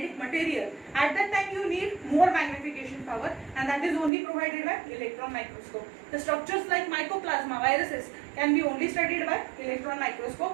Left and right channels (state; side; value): drops out; left; at 4.1 s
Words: material, at that time you need more magnification power, and that is only provided by electron microscope. The structures like mycoplasma, viruses can be only studied by electron